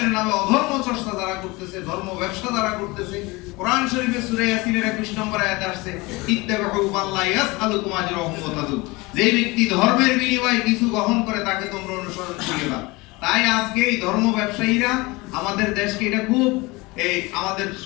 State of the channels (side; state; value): right; quieter; 23.6 dB